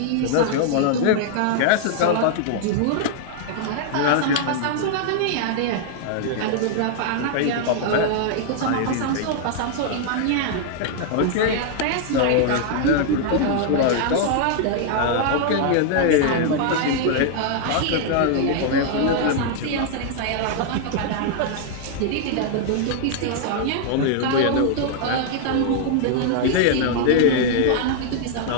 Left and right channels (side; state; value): both; different; correlation 0.00